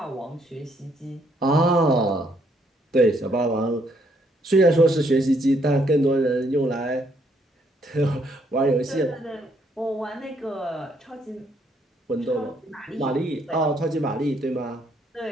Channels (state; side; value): normal; both; correlation 0.70